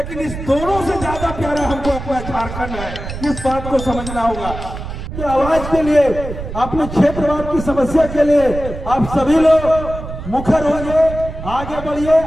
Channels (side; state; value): right; noise; rumble, 9 dB below the sound